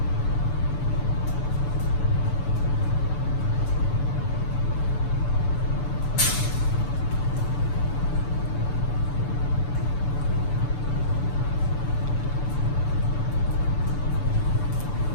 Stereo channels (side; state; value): right; late; 6.9 ms